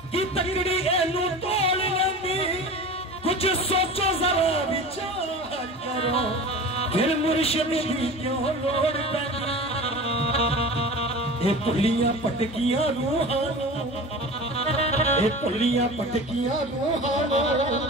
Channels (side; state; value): both; normal; correlation 0.34